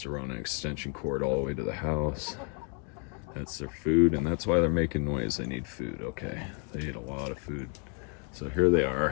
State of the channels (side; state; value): right; quieter; 35.6 dB